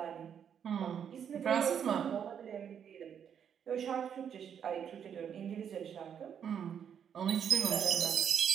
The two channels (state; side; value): quieter; left; 8.2 dB